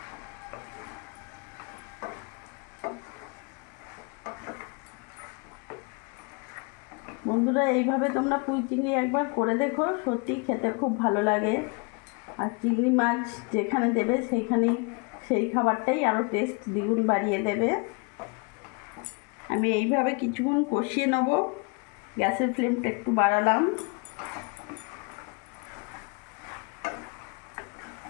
বন্ধুরা, এইভাবে তোমরা পুঁই চিংড়ি একবার করে দেখো, সত্যি খেতে খুব ভালো লাগে। আর চিংড়ি মাছ যেখানে দেবে সেইখানেই সেই খাবারটাই আরও টেস্ট দ্বিগুণ বাড়িয়ে দেবে। আমি এইভাবে কিছুক্ষণ কষিয়ে নেব, গ্যাসের ফ্লেমটা একটু বাড়ালাম।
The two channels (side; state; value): right; quieter; 32.2 dB